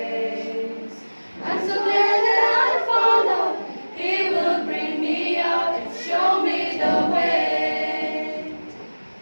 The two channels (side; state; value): both; inverted; correlation -1.00